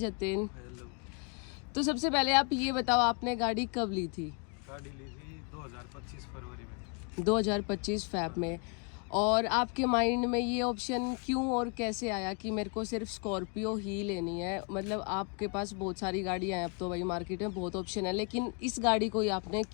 हेलो। तो सबसे पहले आप ये बताओ आपने गाड़ी कब ली थी? गाड़ी ली थी 2025 फरवरी में। 2025 फैब में। और आपके माइंड में ये ऑप्शन क्यों और कैसे आया कि मेरे को सिर्फ स्कॉर्पियो ही लेनी है? मतलब आपके पास बहुत सारी गाड़ियां हैं, अब तो भाई मार्केट में बहुत ऑप्शन है, लेकिन इस गाड़ी को ही आपने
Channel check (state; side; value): quieter; right; 35.1 dB